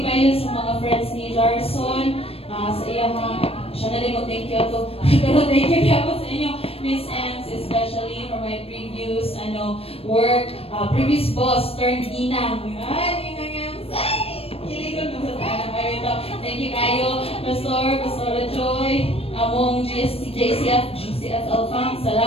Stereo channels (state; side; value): late; right; 0.28 ms